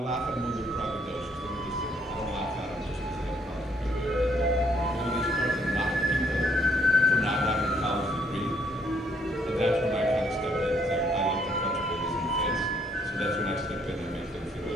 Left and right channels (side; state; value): both; normal; correlation 0.68